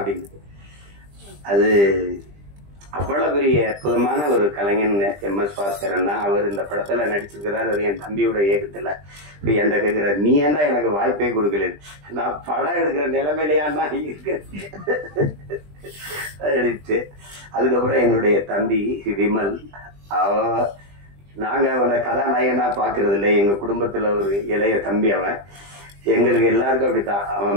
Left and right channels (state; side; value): late; left; 20 ms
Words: அது அவ்வளவு பெரிய அற்புதமான ஒரு கலைஞன் எம்.எஸ். பாஸ்கரன் தான். அவர் இந்த படத்துல நடிச்சிருக்கிறார். அது என் தம்பியோட இயக்கத்துல. இப்ப என்கிட்ட கேட்கிறார், நீ ஏன்டா எனக்கு வாய்ப்பே கொடுக்கல, நான் படம் எடுக்கிற நிலைமையிலையான்னா இருக்கிறேன் அடிச்சு. அதுக்கப்புறம் என்னுடைய தம்பி விமல், நாங்க அவனை கதாநாயகனா பாக்குறது இல்லை, எங்க குடும்பத்துல ஒரு இளைய தம்பி அவன். எங்களுக்கு எல்லாருக்கும் அப்படித்தான்,